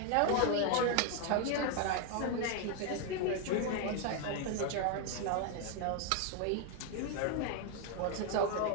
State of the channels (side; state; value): both; different; correlation 0.01